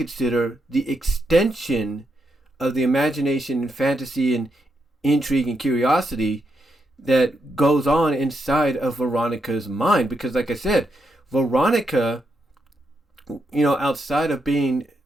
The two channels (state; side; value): normal; both; correlation 0.82